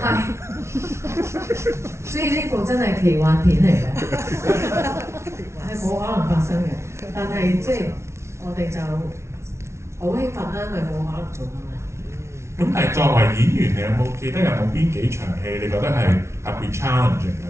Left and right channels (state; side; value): late; left; 0.13 ms